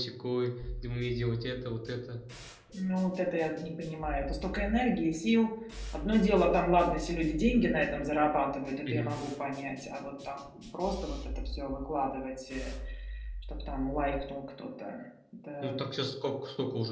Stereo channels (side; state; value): both; identical; correlation 1.00